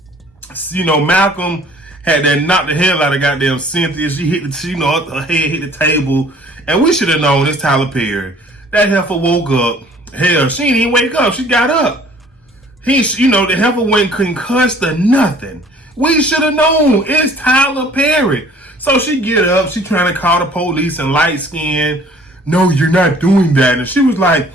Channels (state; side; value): normal; both; correlation 0.54